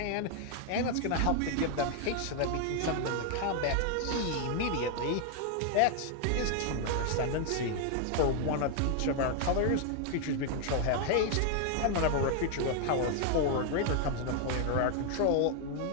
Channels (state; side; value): different; both; correlation 0.00